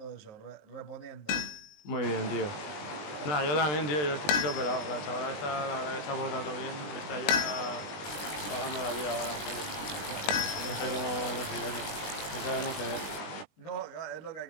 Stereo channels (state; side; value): late; right; 20 ms